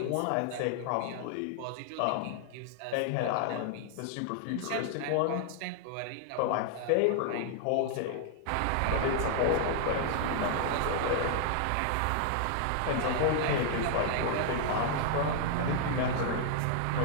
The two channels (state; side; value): different; both; correlation 0.00